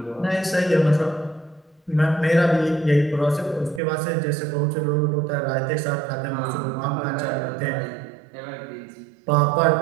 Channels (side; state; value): left; drops out; at 3.8 s